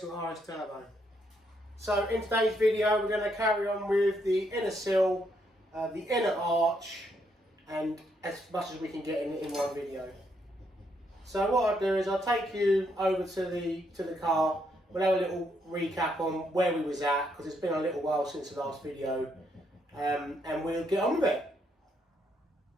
RS Turbo. So in today's video we're going to carry on with the inner sill, the inner arch, and as much as we can get in one video. So what I'll do is I'll take you over to the car. We'll have a little recap on where we was at, because it's been a little while since the last video, and we'll get on with it.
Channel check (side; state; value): both; normal; correlation 0.75